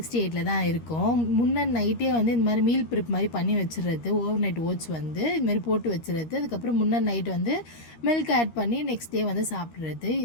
தான் இருக்கும். முன்ன நைட்டே வந்து இந்த மாதிரி மீல் ப்ரிப் மாதிரி பண்ணி வச்சுறது, ஓவர் நைட் ஓட்ஸ் வந்து இது மாதிரி போட்டு வச்சுறது. அதுக்கப்புறம் முன்ன நைட் வந்து மில்க் ஆட் பண்ணி நெக்ஸ்ட் டே வந்து சாப்பிட்றது.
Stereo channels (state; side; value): late; right; 13 ms